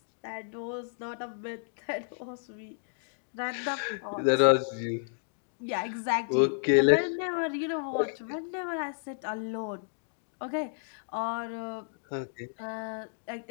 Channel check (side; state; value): right; silent; digital silence